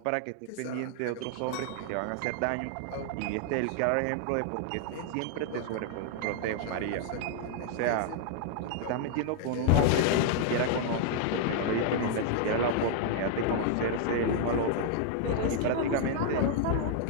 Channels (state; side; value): different; both; correlation 0.00